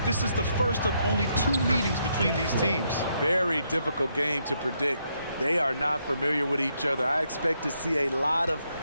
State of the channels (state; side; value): inverted; both; correlation -0.76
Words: this is the first of only 2 meetings between these teams. Very difficult game to predict. They are not familiar with each other. I expect to see a lot of